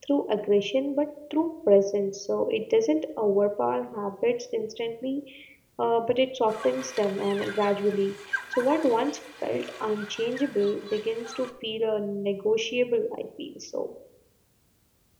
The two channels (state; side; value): identical; both; correlation 1.00